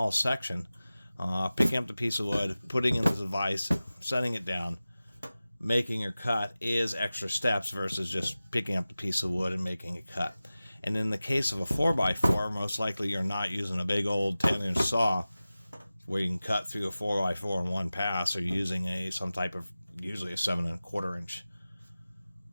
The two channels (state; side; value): inverted; both; correlation -0.96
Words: section, picking up the piece of wood, putting it into the vise, setting it down, making your cut is extra steps versus just picking up the piece of wood and making a cut. And in the case of a 4x4, most likely you're not using a big old 10-inch saw where you can cut through a 4x4 in one pass, or using some type of, usually a 7¼ inch